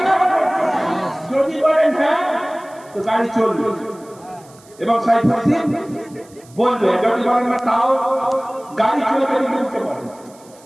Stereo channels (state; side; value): noise; right; hiss, 26 dB below the sound